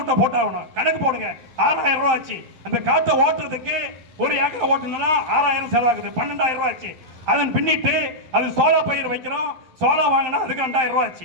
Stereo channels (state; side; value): late; left; 12 ms